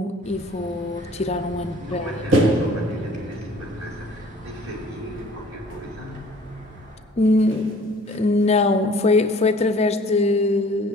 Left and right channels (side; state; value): both; normal; correlation 0.51